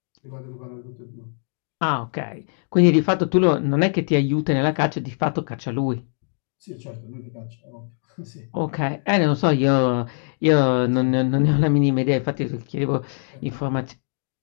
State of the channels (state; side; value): silent; right; digital silence